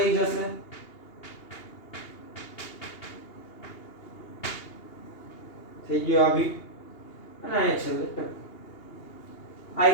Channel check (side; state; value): right; late; 2.8 ms